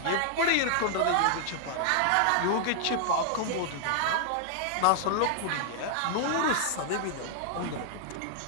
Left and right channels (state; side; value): different; both; correlation -0.01